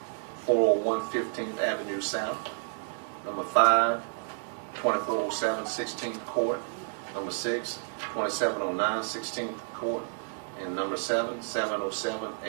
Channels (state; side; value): silent; left; 58 dB below the other